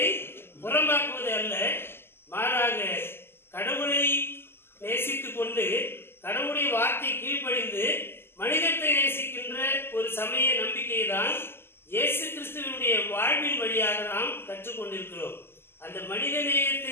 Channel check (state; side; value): late; right; 0.12 ms